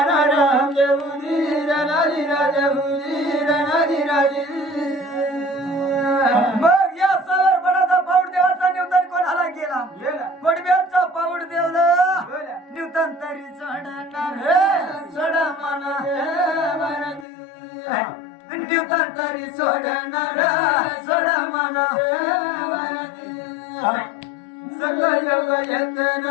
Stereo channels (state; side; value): drops out; right; at 17.2 s